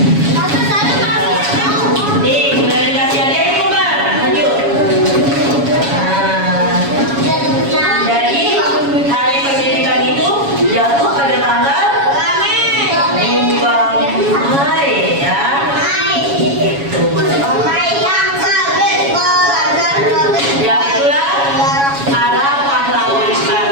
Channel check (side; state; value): left; late; 7.2 ms